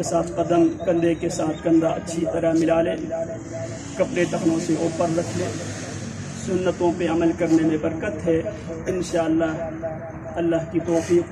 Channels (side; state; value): both; identical; correlation 1.00